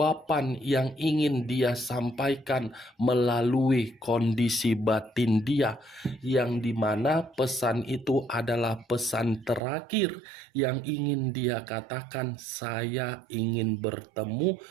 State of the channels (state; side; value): drops out; left; at 9.6 s